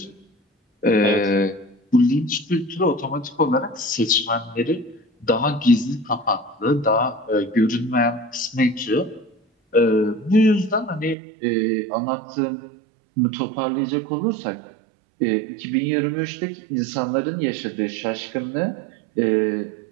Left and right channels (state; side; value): drops out; left; at 11.2 s